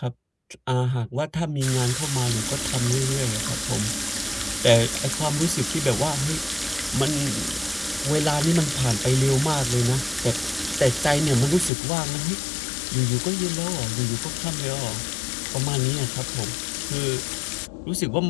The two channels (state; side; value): drops out; right; at 11.7 s